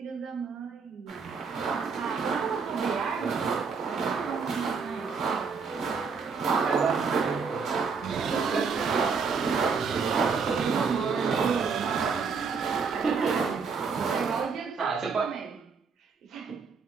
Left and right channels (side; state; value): left; quieter; 5.3 dB